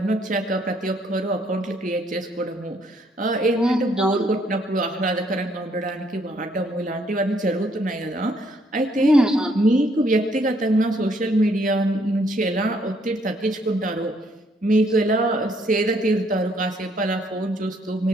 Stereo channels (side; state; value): both; normal; correlation 0.69